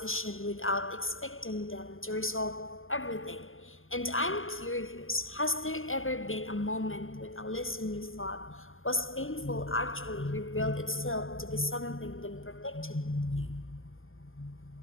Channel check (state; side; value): late; right; 0.59 ms